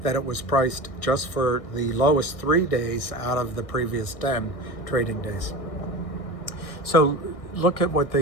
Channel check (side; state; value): right; late; 1.6 ms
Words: that it was priced just for the lowest 3 days out of the previous 10 trading days. So look at what